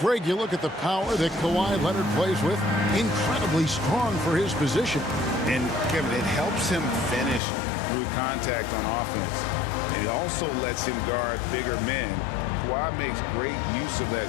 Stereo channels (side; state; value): right; drops out; at 7.4 s